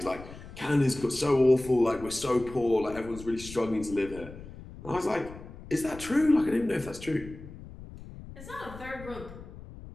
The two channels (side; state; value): left; noise; rumble, 15 dB below the sound